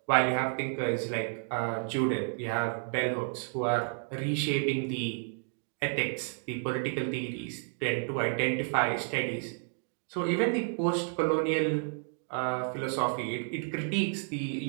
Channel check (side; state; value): left; silent; 57 dB below the other